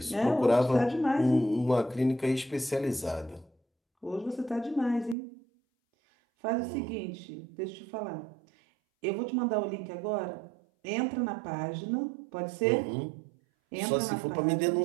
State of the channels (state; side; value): drops out; left; at 5.2 s